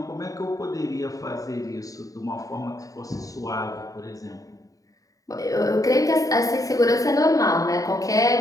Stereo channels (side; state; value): right; late; 0.17 ms